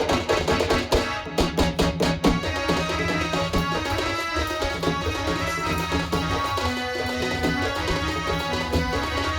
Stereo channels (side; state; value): both; identical; correlation 1.00